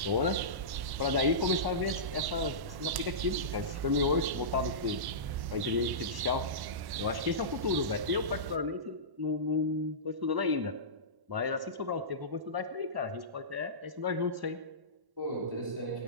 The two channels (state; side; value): late; left; 1.1 ms